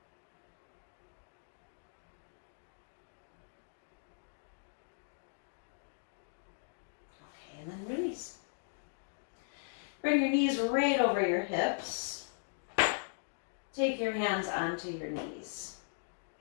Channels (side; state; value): right; silent; digital silence